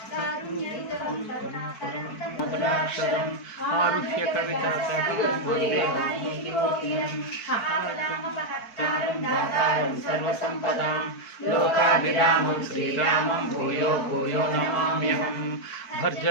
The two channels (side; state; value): right; late; 4.5 ms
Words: కారుణ్యయుతం కరుణాకరం మధురాక్షరం ఆరుహ్య కవితాసకం వందే రామభక్తారం దాతారం సర్వసంపదాం లోకాభిరామం శ్రీరామం భూయో భూయో నమామ్యహం